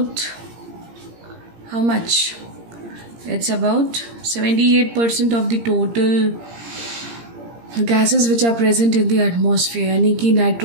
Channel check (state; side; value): late; left; 17 ms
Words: how much? It's about 78% of the total gases which are present in the atmosphere, यानी कि